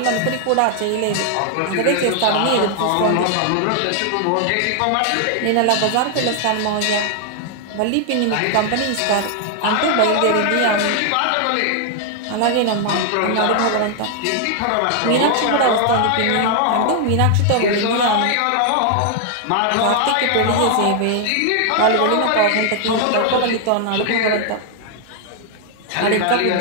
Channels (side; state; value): both; different; correlation 0.00